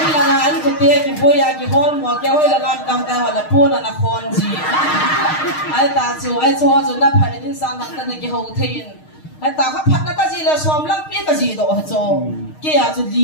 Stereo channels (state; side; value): late; right; 6.5 ms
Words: là anh có tiền cái bôi cái hòn mua cái hơi là làm cam ta là pun là khon gì ai ta cho nó phải đến sang hàng tân cái hậu thiên ai ta khắp phát nó cái gì là xóm lăng biết cái gì đó cho cái à cho